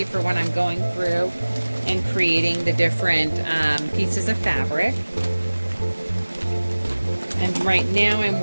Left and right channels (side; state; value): both; inverted; correlation -1.00